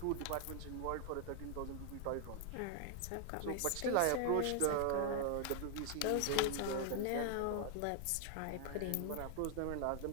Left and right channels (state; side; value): different; both; correlation 0.00